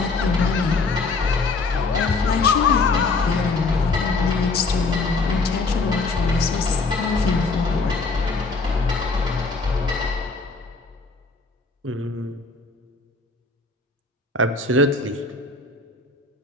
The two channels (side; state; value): right; quieter; 3.9 dB